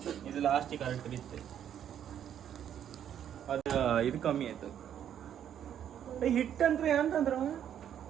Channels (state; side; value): quieter; left; 9.7 dB